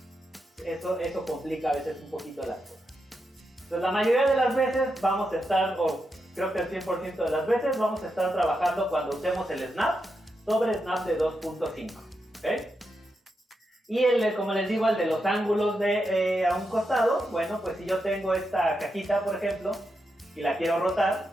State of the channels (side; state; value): both; normal; correlation 0.85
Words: Eso complica a veces un poquito las cosas. Entonces, la mayoría de las veces vamos a estar, o creo que el 100% de las veces, vamos a estar trabajando cuando usemos el snap sobre snap de 2.5, ¿ok? Y como les digo, el de los ángulos a un costado, bueno, pues si yo tengo esta cajita, por ejemplo, y la quiero rotar,